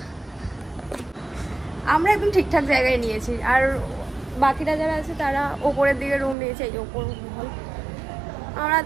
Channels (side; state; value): left; drops out; at 6.4 s